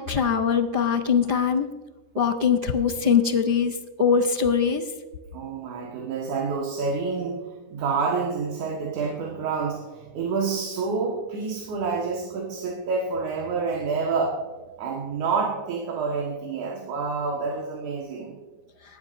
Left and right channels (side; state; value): left; late; 9.8 ms